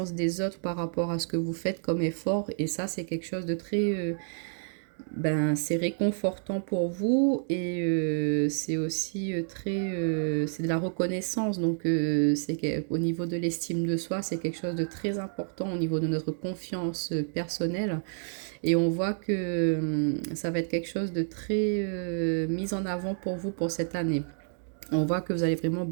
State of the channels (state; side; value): silent; left; digital silence